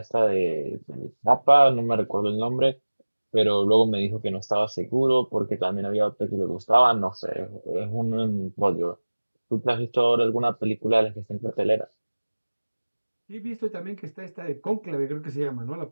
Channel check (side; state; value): both; inverted; correlation -1.00